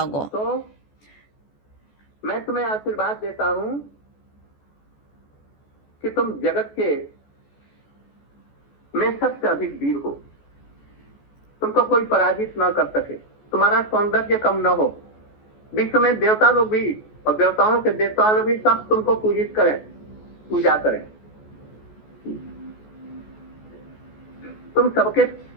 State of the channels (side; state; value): right; late; 14 ms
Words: 过。 तो मैं तुम्हें आशीर्वाद देता हूं कि तुम जगत के में सबसे अधिक वीर हो। तुमको कोई पराजित ना कर सके, तुम्हारा सौंदर्य कम न हो। विश्व में देवता लोग भी और देवताओं के देवता लोग भी सब तुमको पूजित करें, पूजा करें। तुम सबके